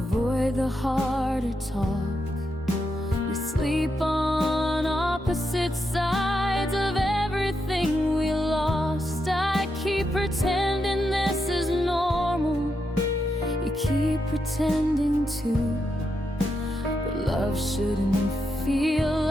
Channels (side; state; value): both; normal; correlation 0.84